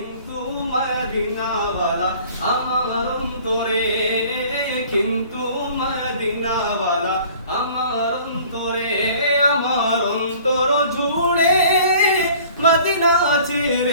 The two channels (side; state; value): both; inverted; correlation -0.50